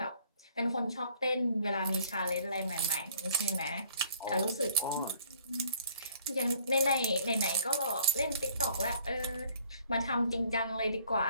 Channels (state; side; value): inverted; both; correlation -0.59